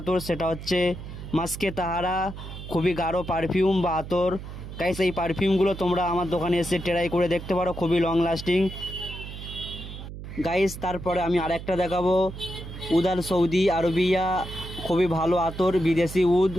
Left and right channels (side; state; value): right; noise; hum, 11 dB below the sound